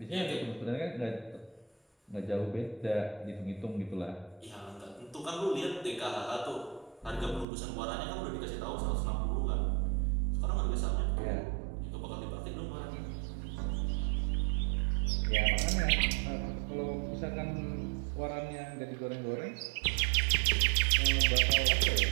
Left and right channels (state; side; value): drops out; left; at 7.5 s